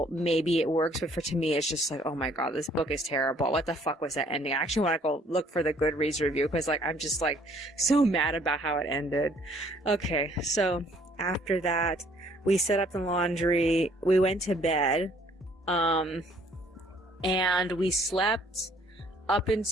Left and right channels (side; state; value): both; normal; correlation 0.61